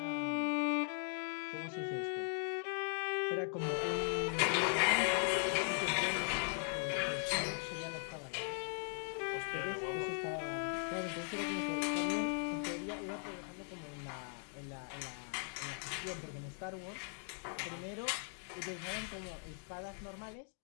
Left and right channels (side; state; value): right; silent; 51 dB below the other